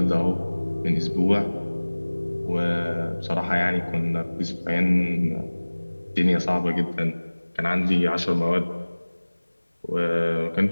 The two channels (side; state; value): both; inverted; correlation -1.00